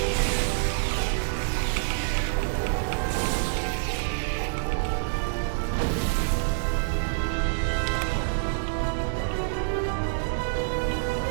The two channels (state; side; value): silent; left; digital silence